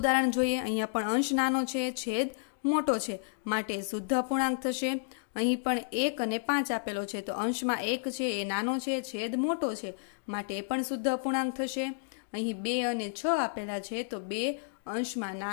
જોઈએ. અહીંયા પણ અંશ નાનો છે, છેદ મોટો છે, માટે શુદ્ધ અપૂર્ણાંક થશે. અહીં પણ 1 અને 5 આપેલો છે, તો અંશમાં 1 છે એ નાનો છે, છેદ મોટો છે, માટે એ પણ શુદ્ધ અપૂર્ણાંક થશે. અહીં 2 અને 6 આપેલા છે, તો 2 અંશમાં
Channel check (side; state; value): right; silent; digital silence